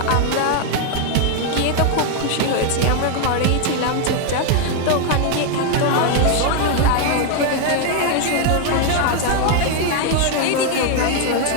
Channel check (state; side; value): different; both; correlation 0.00